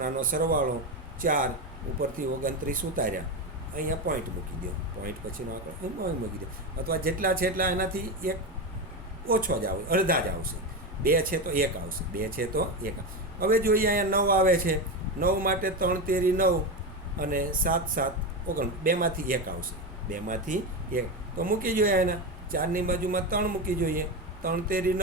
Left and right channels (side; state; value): both; normal; correlation 0.16